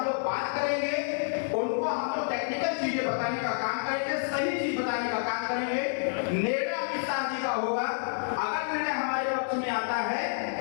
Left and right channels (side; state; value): right; silent; 59 dB below the other